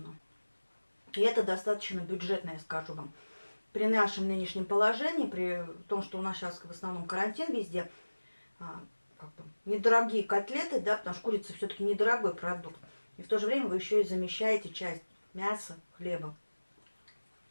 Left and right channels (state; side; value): inverted; both; correlation -1.00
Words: И это достаточно бюджетно, я скажу вам. При нашем нынешнем положении, при том, что у нас сейчас в основном карантин везде, как бы, недорогие котлеты, да, потому что курица все-таки недорогой продукт. И в то же время вы еще и замещаете часть мяса, хлеба.